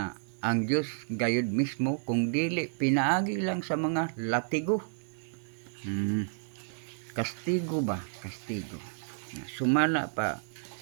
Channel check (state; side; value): silent; left; 57 dB below the other